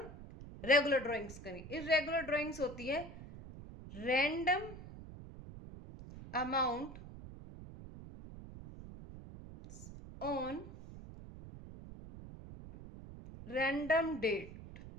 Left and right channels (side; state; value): right; noise; rumble, 14 dB below the sound